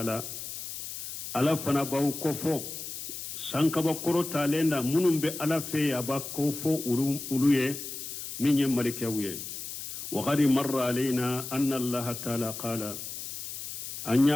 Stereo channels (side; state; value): left; noise; hiss, 8 dB below the sound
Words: ala fana baw kofo sankaba koro talenda munum be ala fe aba kofo uluye minye malikawye wa qad marra alaina anna allah ta'ala qala